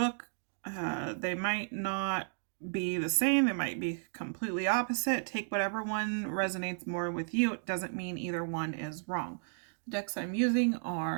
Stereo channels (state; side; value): silent; left; digital silence